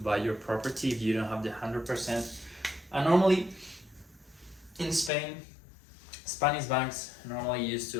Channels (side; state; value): right; drops out; at 5.1 s